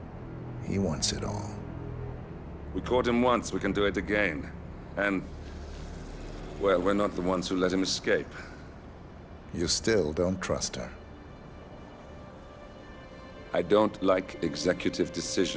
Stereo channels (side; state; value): both; identical; correlation 1.00